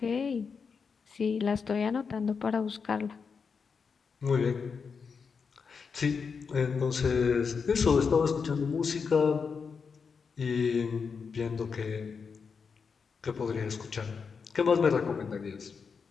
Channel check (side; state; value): right; quieter; 5.6 dB